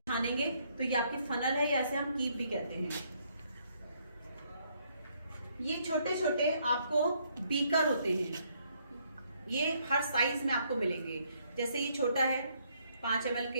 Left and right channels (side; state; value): both; inverted; correlation -0.70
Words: छानेंगे, तो ये आपकी फनल है, या ऐसे हम कीप भी कहते हैं। ये छोटे छोटे आपको बीकर होते हैं, ये हर साइज में आपको मिलेंगे। जैसे ये छोटा है, 5 ml